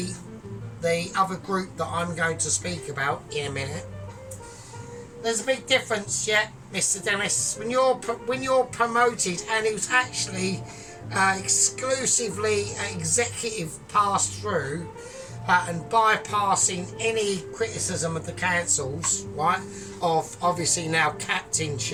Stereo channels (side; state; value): both; identical; correlation 1.00